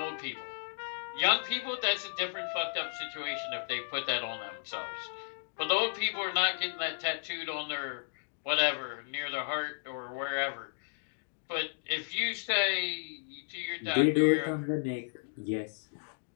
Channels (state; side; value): silent; right; digital silence